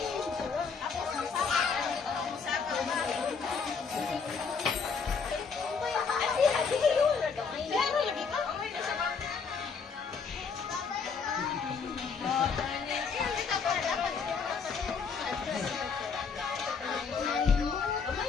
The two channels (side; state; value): right; quieter; 5.5 dB